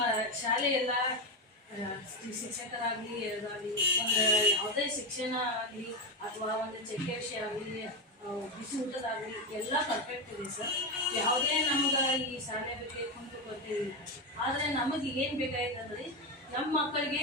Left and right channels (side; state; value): both; normal; correlation 0.12